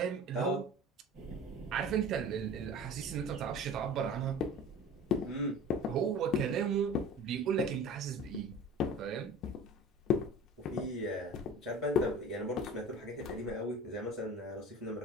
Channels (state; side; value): normal; both; correlation 0.38